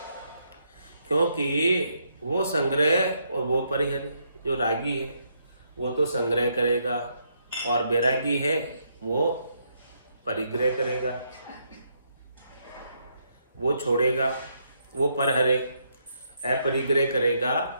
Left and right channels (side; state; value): both; inverted; correlation -0.76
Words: क्योंकि वो संग्रह और वो परिहर। जो रागी है वो तो संग्रह करेगा, और बैरागी है वो परिग्रह करेगा, वो छोड़ेगा, वो परहरे अपरिग्रह करेगा